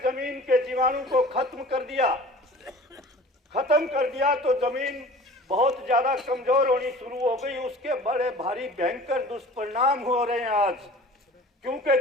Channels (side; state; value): both; normal; correlation 0.43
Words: जमीन के जीवाणु को खत्म कर दिया तो जमीन बहुत ज्यादा कमजोर होनी शुरू हो गई। उसके बड़े भारी भयंकर दुष्परिणाम हो रहे हैं आज, क्योंकि